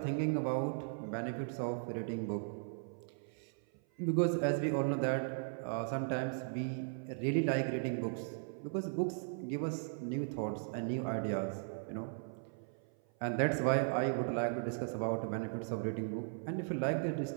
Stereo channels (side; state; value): left; silent; 53 dB below the other